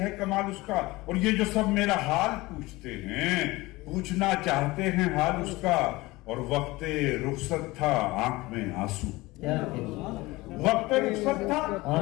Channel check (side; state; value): right; quieter; 20.8 dB